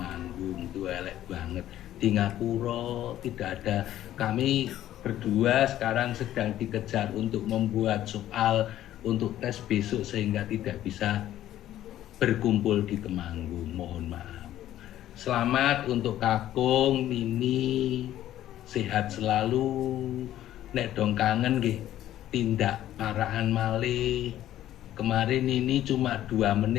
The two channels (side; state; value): right; quieter; 12.8 dB